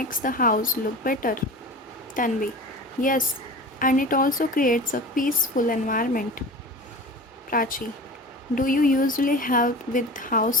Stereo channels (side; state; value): both; normal; correlation 0.35